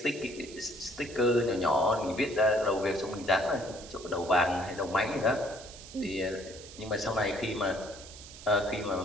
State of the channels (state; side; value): noise; right; hiss, 16 dB below the sound